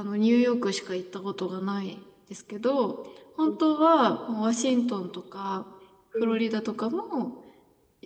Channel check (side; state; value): both; identical; correlation 1.00